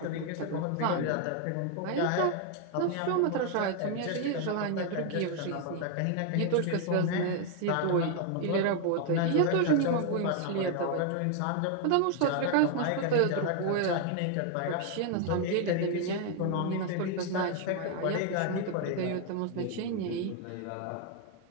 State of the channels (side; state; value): both; different; correlation 0.01